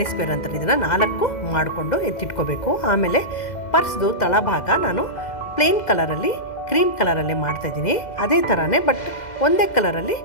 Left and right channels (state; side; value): late; right; 2.0 ms